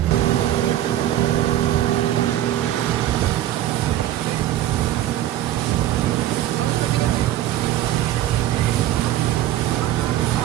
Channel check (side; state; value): left; quieter; 13.0 dB